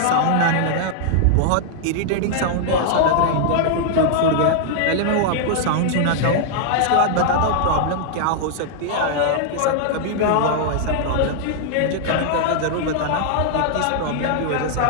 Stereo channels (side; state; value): both; different; correlation -0.01